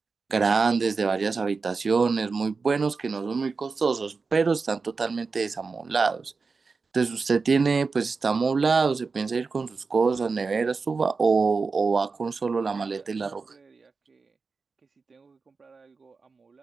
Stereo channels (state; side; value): quieter; left; 4.5 dB